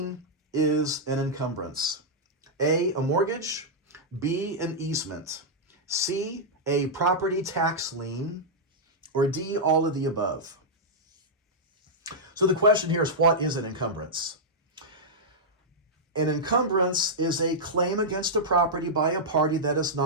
is an encumbrance? A mortgage, B, an easement, C, a property tax lien, or D, all of the above. So the question here is, what is an encumbrance? An encumbrance is a claim against a property by a party that is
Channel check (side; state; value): both; normal; correlation -0.08